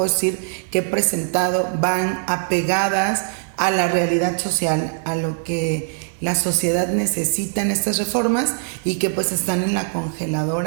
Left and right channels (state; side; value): silent; left; digital silence